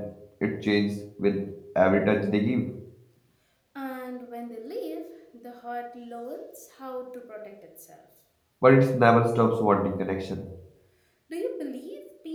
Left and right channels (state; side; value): identical; both; correlation 1.00